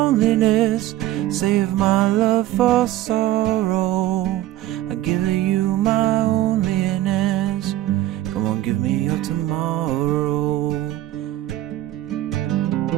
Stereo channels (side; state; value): left; quieter; 14.6 dB